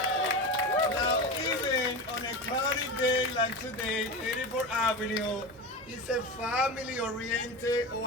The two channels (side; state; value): both; normal; correlation 0.24